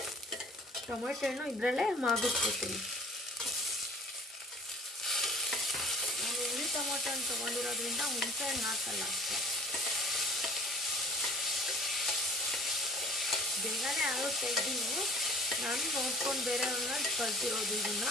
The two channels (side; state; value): both; normal; correlation 0.49